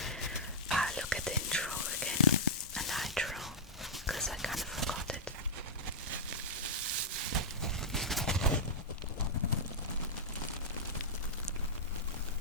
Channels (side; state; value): both; normal; correlation -0.09